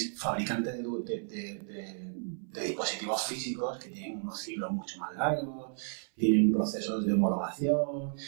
fabricantes de dispositivos físicos que tienen unos ciclos mucho más largos, tienen procesos de homologación,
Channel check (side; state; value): left; silent; 56 dB below the other